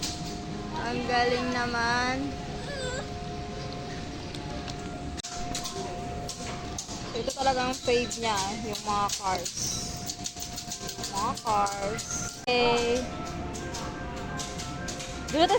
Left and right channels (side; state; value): both; identical; correlation 1.00